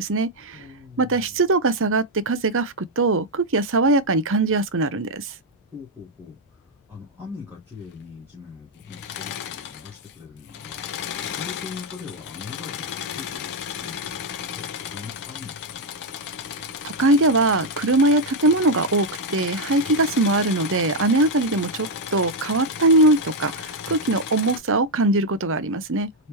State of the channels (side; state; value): both; normal; correlation 0.01